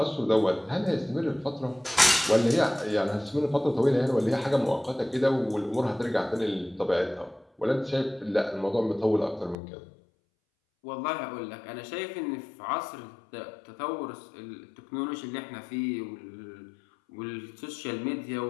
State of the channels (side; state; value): right; drops out; at 9.6 s